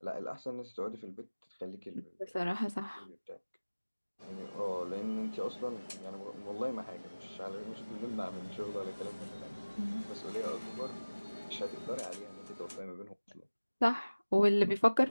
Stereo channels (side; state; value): both; inverted; correlation -1.00